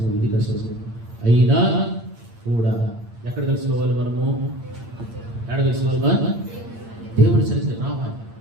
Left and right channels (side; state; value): left; late; 8.7 ms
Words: ఇది కష్టము. అయినా కూడా ఎక్కడ కలుసుకోవాలి మనము? ఎక్కడ కలుసుకోవాలి? దేవుడి సన్నిధికి రావాలి.